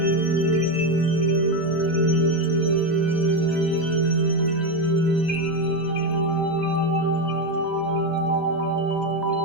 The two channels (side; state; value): both; normal; correlation 0.10